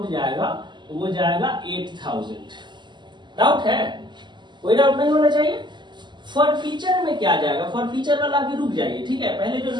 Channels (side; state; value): left; late; 0.22 ms